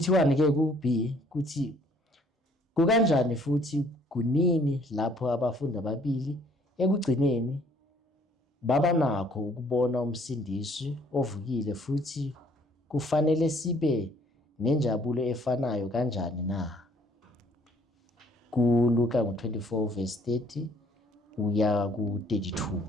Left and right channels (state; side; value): normal; both; correlation 0.61